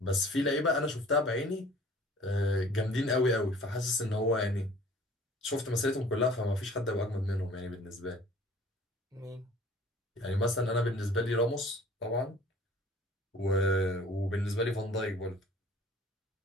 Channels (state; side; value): normal; both; correlation 0.50